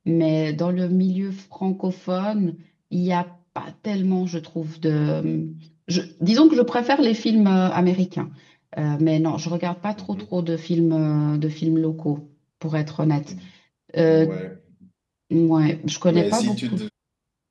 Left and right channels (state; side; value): identical; both; correlation 1.00